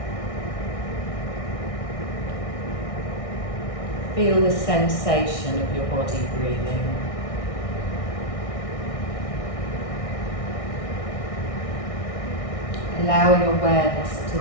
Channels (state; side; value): late; right; 1.6 ms